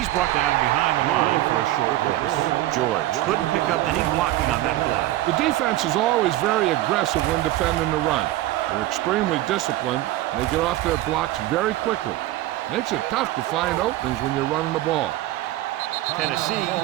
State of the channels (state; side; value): quieter; left; 15.6 dB